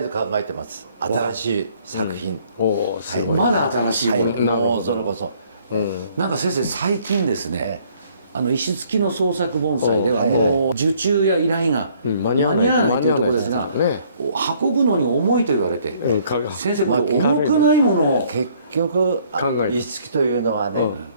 ず考えてます。新しい作品、おーすごい。まだ新しいもの、もうそれこそ、なんか先生最近ですね、石付きの創作盆栽ではもう受注や依頼が間に合わないというところですが、運ぶのに重いと言われて、先生この重くないものを結局石付きというのはね、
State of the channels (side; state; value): both; inverted; correlation -0.62